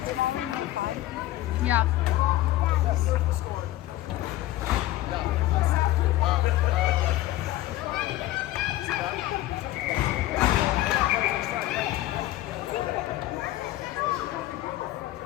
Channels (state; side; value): quieter; right; 15.4 dB